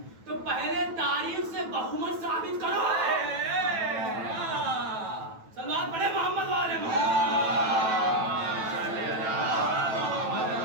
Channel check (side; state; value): left; late; 9.1 ms